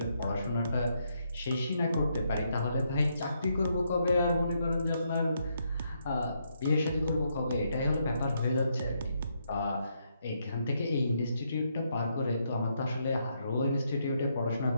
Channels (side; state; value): both; inverted; correlation -0.77